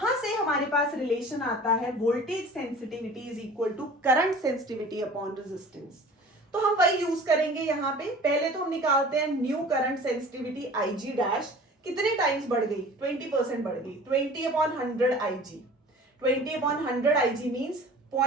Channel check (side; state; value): both; normal; correlation 0.43